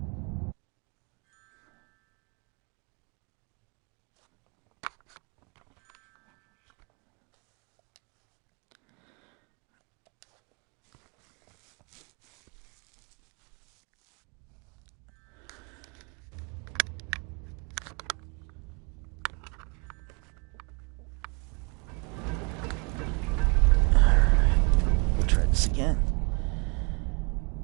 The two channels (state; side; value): quieter; left; 32.5 dB